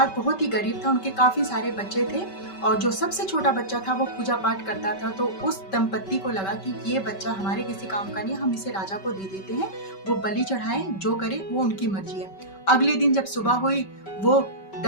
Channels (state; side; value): late; right; 5.2 ms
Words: बहुत ही गरीब था, उनके काफी सारे बच्चे थे और जो सबसे छोटा बच्चा था वो पूजा पाठ करता था। तो उस दंपत्ति को लगा कि ये बच्चा हमारे किसी काम का नहीं, हम इसे राजा को दे देते हैं, वो बलि चढ़ाए, जो करे वो उनकी मर्जी है। अगले दिन जब सुबह हुई, वो